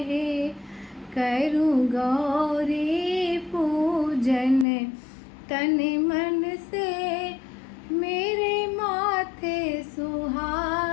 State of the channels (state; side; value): drops out; right; at 4.7 s